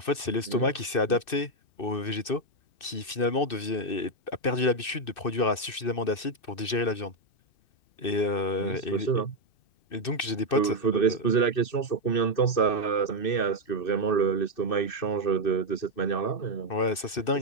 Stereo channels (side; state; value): right; late; 2.6 ms